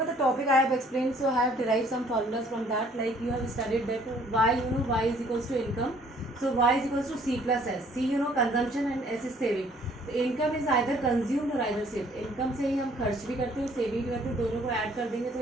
the topic I have explained, so I have derived some formulas from that. Like you have studied that y is equals to income. So y is equals to c plus s. C consumption and s is saving. तो income is either consumed और either saved. Income से ही हम खर्च भी करते हैं, saving भी करते हैं, दोनों को ऐड कर देंगे तो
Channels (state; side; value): normal; both; correlation 0.60